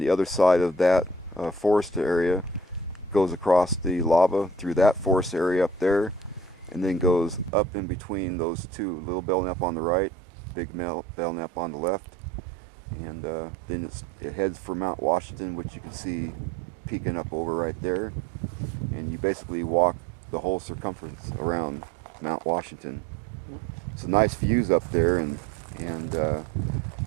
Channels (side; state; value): left; drops out; at 7.5 s